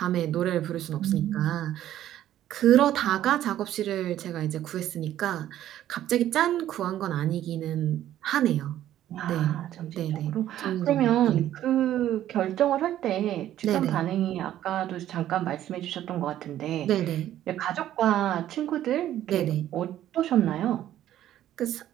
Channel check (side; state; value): left; quieter; 12.3 dB